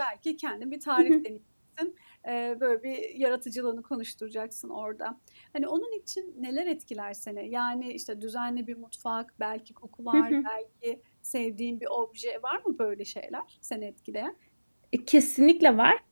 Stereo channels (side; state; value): both; inverted; correlation -1.00